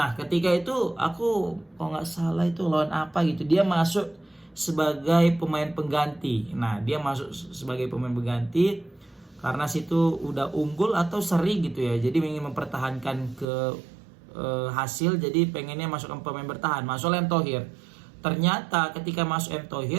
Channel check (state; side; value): drops out; left; at 13.5 s